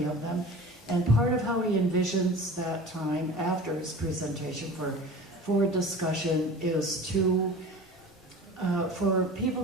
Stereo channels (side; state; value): both; normal; correlation 0.38